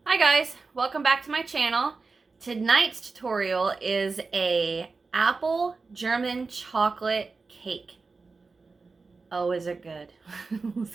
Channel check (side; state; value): left; quieter; 4.2 dB